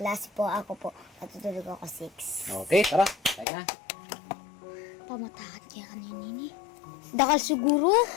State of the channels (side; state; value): right; drops out; at 3.5 s